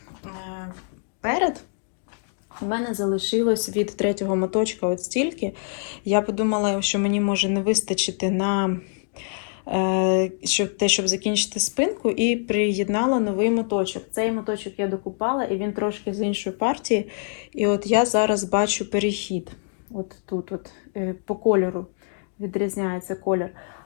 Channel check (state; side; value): silent; right; digital silence